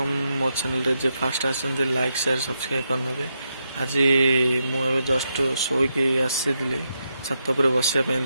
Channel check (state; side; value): inverted; both; correlation -0.83